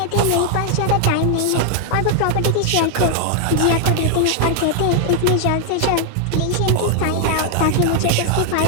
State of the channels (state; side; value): different; both; correlation 0.00